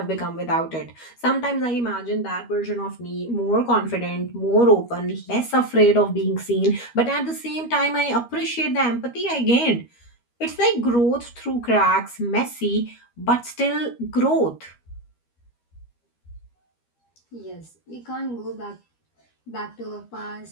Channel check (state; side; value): late; right; 13 ms